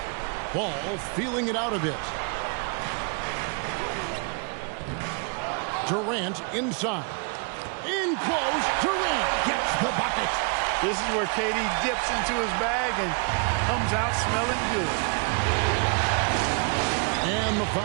Ball feeling it out a bit. Durant inside. In close. Durant gets the bucket. This is where KD dips into his bag and comes out smelling good. And the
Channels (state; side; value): quieter; left; 37.4 dB